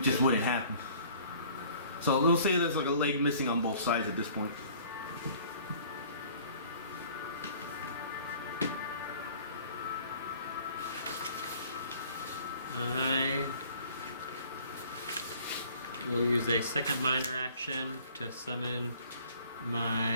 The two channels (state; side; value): inverted; both; correlation -0.53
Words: just wouldn't happen. So we'll say there's like a leg missing on both sides at this point. I will use a second minor action to summon